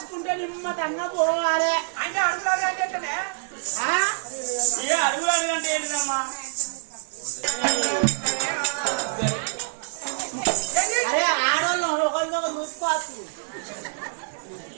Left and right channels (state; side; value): silent; left; 61 dB below the other